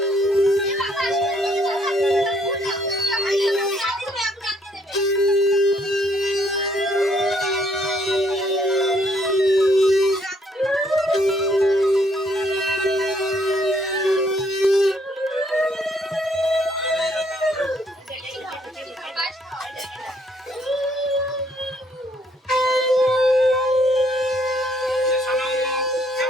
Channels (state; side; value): normal; both; correlation 0.68